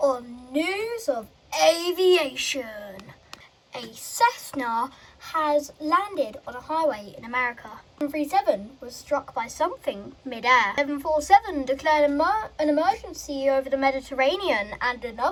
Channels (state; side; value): identical; both; correlation 1.00